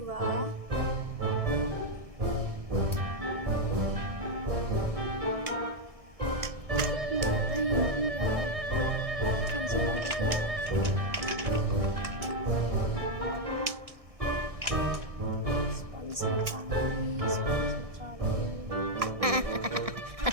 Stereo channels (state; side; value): late; left; 1.6 ms